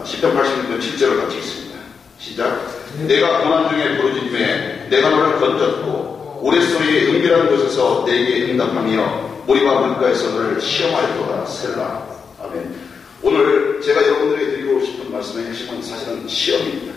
86편 7절을 같이 읽습니다. 시작. 내가 고난 중에 부르짖음에 내가 너를 건졌고 우레소리의 은밀한 곳에서 내게 응답하며 모리와 물가에서 너를 시험하였도다. 셀라. 아멘. 오늘 제가 여러분들에게 드리고 싶은 말씀의 핵심은 사실은 시험입니다.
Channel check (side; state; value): right; quieter; 5.8 dB